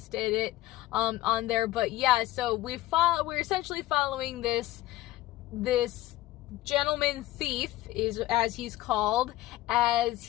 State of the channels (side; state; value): right; quieter; 16.2 dB